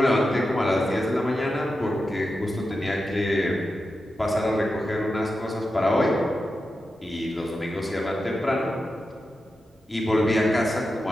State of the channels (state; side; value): normal; both; correlation 0.90